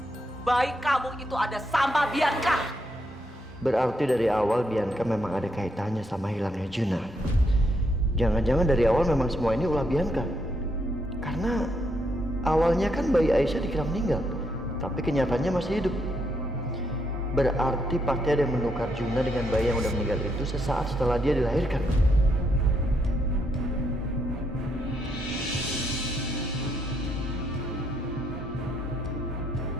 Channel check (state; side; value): normal; both; correlation 0.77